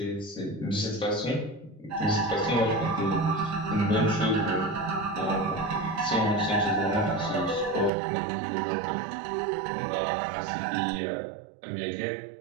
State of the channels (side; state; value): left; drops out; at 7.9 s